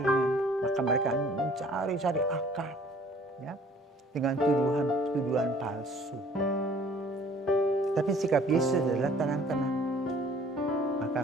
Maka mereka mencari akal, ya, dengan tuduhan palsu. Tapi sikap Yesus adalah tenang-tenang. Maka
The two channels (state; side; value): normal; both; correlation 0.54